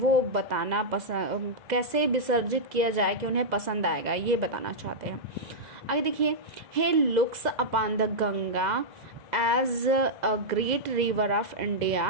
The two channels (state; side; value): late; left; 2.0 ms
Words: बताना पसंद, कैसे विसर्जित किया जाए कि उन्हें पसंद आएगा, ये बताना चाहते हैं। आगे देखिए, he looks upon the Ganga as a great river of